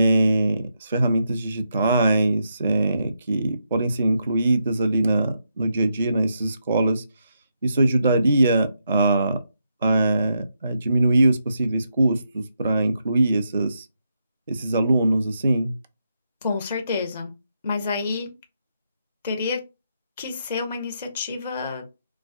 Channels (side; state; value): both; inverted; correlation -0.82